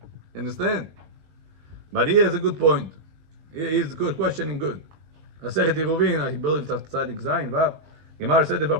Understand? But he has a good point. He's good questioning good. Masechet Eruvin, I believe it's Tzadik Zayin, Vav. Gemara said if a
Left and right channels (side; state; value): left; late; 20 ms